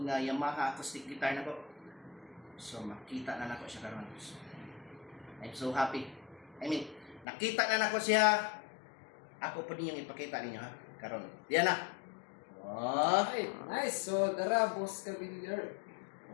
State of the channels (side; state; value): right; drops out; at 7.2 s